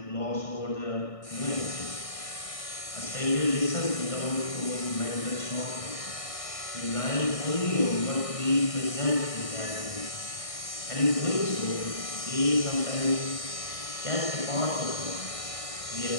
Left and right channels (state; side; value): late; right; 1.6 ms